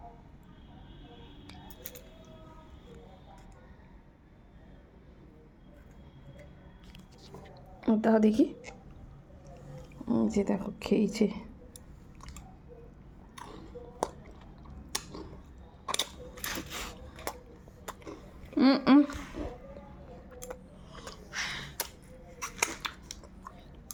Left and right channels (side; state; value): both; identical; correlation 1.00